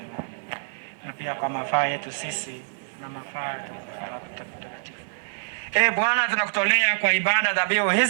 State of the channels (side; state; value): left; silent; digital silence